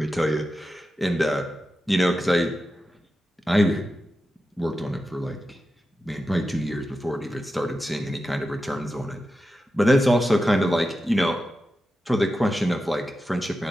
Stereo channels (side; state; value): both; normal; correlation 0.91